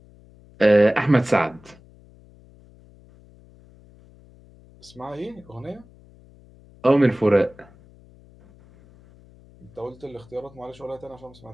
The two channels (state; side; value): noise; left; hum, 25 dB below the sound